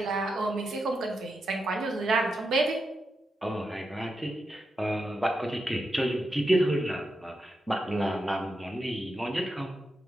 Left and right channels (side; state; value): both; normal; correlation 0.86